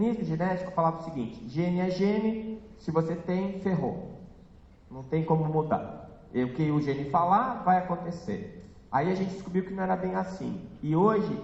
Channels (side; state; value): both; identical; correlation 1.00